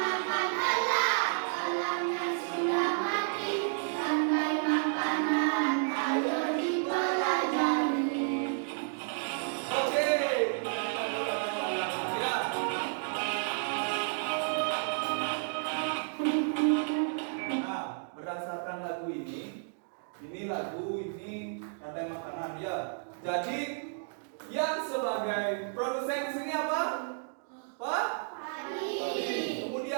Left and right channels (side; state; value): left; silent; digital silence